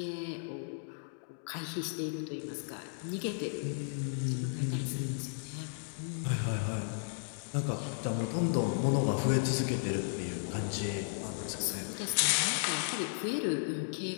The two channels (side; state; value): right; silent; digital silence